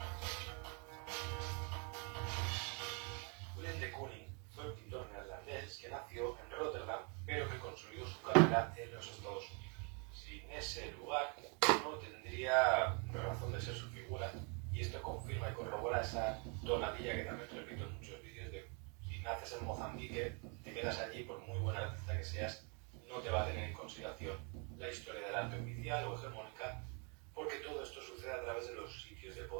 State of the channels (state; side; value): quieter; left; 35.7 dB